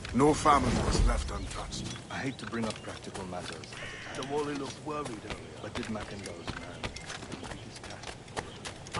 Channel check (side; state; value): both; identical; correlation 1.00